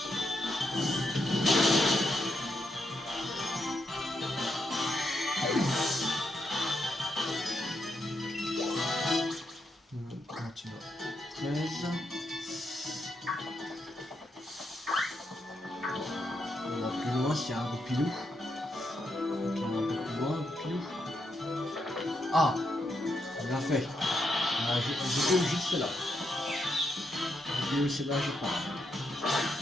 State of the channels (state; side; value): normal; both; correlation 0.81